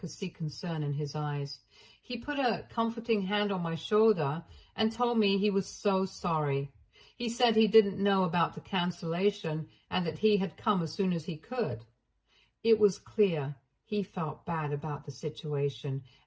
see concern in his eyes. He put a comforting hand on my shoulder and told me he was so sorry. He said he didn't know about the cancellation and that he had come as soon as he could. It was clear he felt bad about the situation,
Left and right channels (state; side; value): identical; both; correlation 1.00